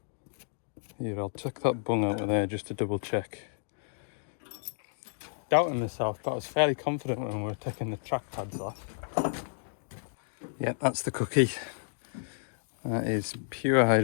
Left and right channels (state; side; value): silent; right; digital silence